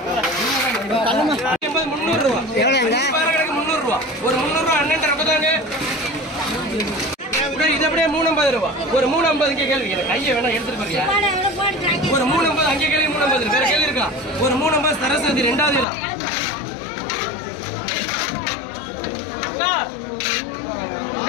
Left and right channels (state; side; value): drops out; right; at 15.9 s